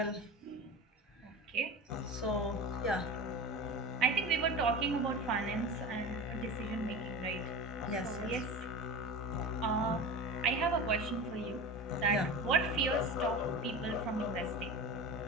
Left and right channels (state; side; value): normal; both; correlation 0.30